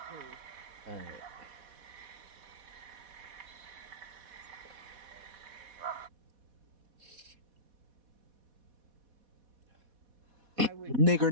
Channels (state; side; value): late; left; 4.1 ms